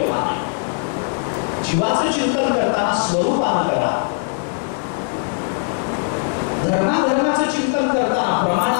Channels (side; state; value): right; silent; 66 dB below the other